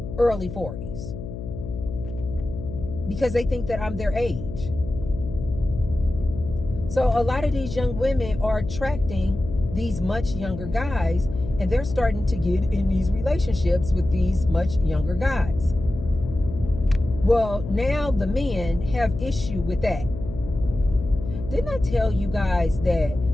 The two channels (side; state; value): left; noise; hum, 9 dB below the sound